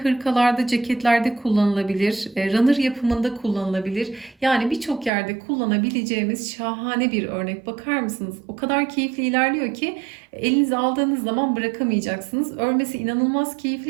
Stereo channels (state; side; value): drops out; left; at 5.1 s